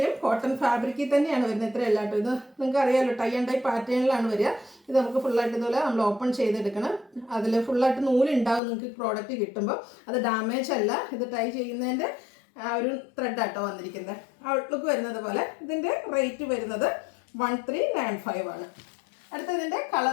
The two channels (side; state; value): right; drops out; at 8.6 s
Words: കോട്ടൺ ഫാബ്രിക്കിൽ തന്നെയാണ് വരുന്നത്. ഇത്രയല്ല കേട്ടോ, ഇത് നിങ്ങൾക്ക് അറിയാമല്ലോ, ടൈ ആൻഡ് ഡൈ പാറ്റേണിലാണ് വരിക. ഇത് നമുക്ക് ഫുള്ളായിട്ട് ഇതുപോലെ നമ്മൾ ഓപ്പൺ ചെയ്തെടുക്കണം. അതിൽ ഫുള്ളായിട്ട് നൂലുണ്ടാവും നിങ്ങൾക്ക് പ്രോഡക്റ്റ് കിട്ടുമ്പോൾ. അത് ഡാമേജ് അല്ല, ഇത് ടൈ ചെയ്യുന്നതിൻ്റെ ആ ഒരു ത്രെഡാട്ടോ വന്നിരിക്കുന്നത്. ഔട്ട്ലുക്ക് വരുന്നത് പോലെ. ഇതിൻ്റെ റേറ്റ് വരുന്നത് 1395 ആണ്. അടുത്തതിൻ്റെ